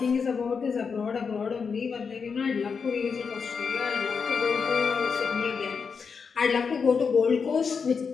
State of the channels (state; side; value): quieter; right; 5.7 dB